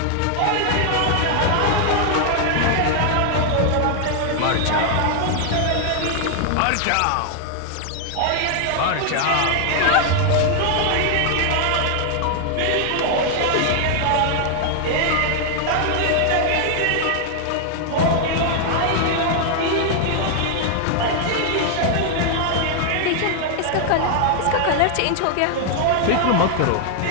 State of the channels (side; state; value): both; different; correlation 0.00